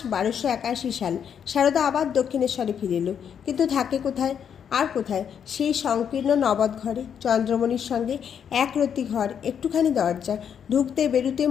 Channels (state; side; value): quieter; right; 8.0 dB